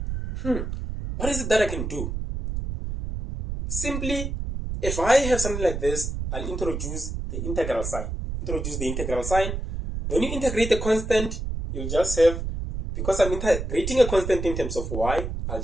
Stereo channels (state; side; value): noise; right; rumble, 4 dB below the sound